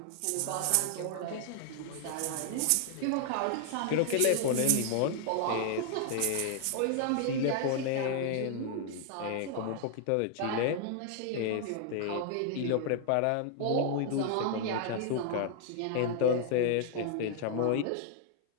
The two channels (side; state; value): both; different; correlation 0.00